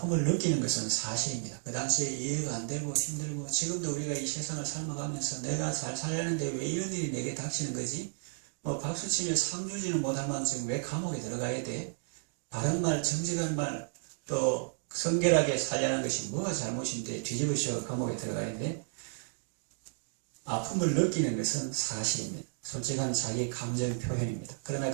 느끼는 것은 사실입니다. 그 당시에 이해가 안 되고 힘들고 지금도 우리가 이 세상을 삶아가면서 내가 잘 살려는데 왜 이런 일이 내게 닥치는 거지? 박수치며 상 주지는 못할 만큼 왜 감옥에 들어가야 돼? 바른 말, 정직한 말, 또 성결하게 살려는 것이 뭐가 잘못인데 뒤집으셔 감옥에 들어가야 돼? 아픔을 느끼는 것은 사실입니다. 솔직한 자기 감정 표현입니다. 그러나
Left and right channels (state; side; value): silent; left; digital silence